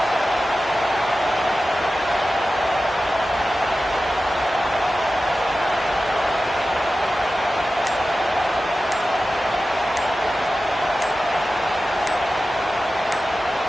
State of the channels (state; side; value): normal; both; correlation 0.94